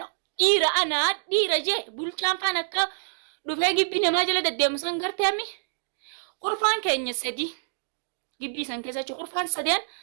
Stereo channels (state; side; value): silent; left; digital silence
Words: dhiira anaa dhiira jee bulchaan faan akka dhufee gibbii namaa jala deddeemu san garteemi qurfaan keenya sadi gibbii san keessa qurfaan sadeen